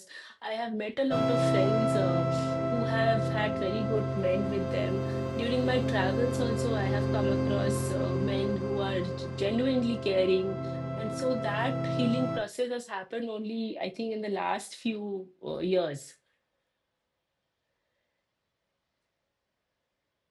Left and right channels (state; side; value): identical; both; correlation 1.00